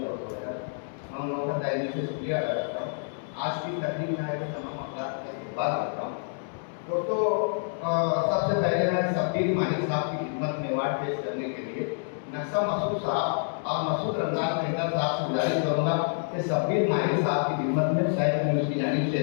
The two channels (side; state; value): right; silent; digital silence